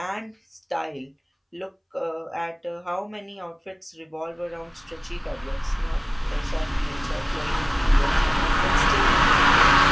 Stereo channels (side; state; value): both; identical; correlation 1.00